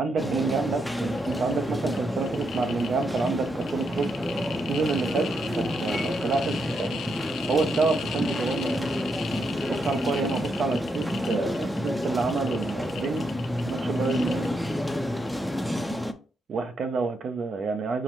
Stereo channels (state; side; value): normal; both; correlation 0.80